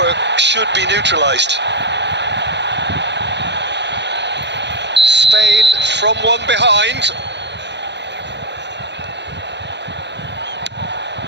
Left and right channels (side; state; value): left; late; 0.51 ms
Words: should be neutralised. Spain from one behind.